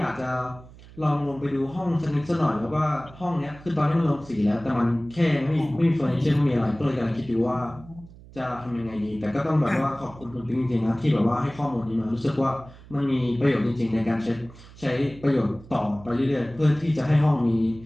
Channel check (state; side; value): noise; right; hum, 20 dB below the sound